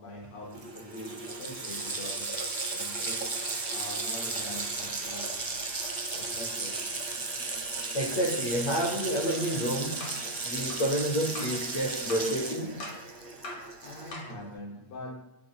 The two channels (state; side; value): late; right; 8.6 ms